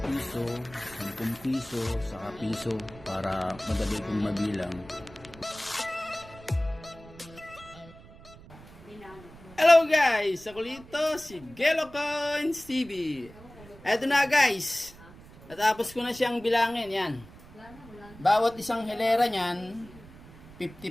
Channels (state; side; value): noise; right; rumble, 20 dB below the sound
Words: piso, 10 piso, saka piso para madali kong mabilang. Hello guys! Ako dito si Gelo Coins TV. Eto na guys, natapos ko na siyang bilangin yan. Bawat isang hilera niyan, 50